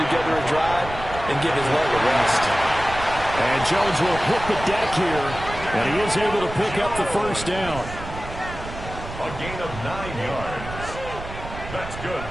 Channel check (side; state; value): right; noise; rumble, 11 dB below the sound